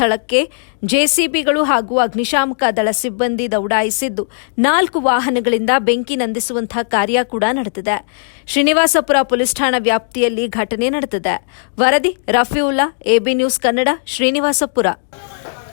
ಜೆಸಿಬಿಗಳು ಹಾಗೂ ಅಗ್ನಿಶಾಮಕ ದಳ ಸಿಬ್ಬಂದಿ ದೌಡಾಯಿಸಿದ್ದು, 4 ವಾಹನಗಳಿಂದ ಬೆಂಕಿ ನಂದಿಸುವಂತಹ ಕಾರ್ಯ ಕೂಡ ನಡೆದಿದೆ. ಶ್ರೀನಿವಾಸಪುರ ಪೊಲೀಸ್ ಠಾಣಾ ವ್ಯಾಪ್ತಿಯಲ್ಲಿ ಘಟನೆ ನಡೆದಿದೆ. ವರದಿ ರಫೀವುಲ್ಲಾ, ಎಬಿ ನ್ಯೂಸ್ ಕನ್ನಡ, ಶ್ರೀನಿವಾಸಪುರ.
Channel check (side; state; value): right; silent; digital silence